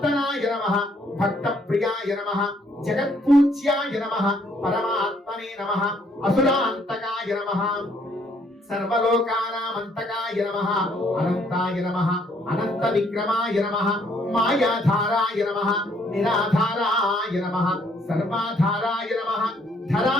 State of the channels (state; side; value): normal; both; correlation 0.67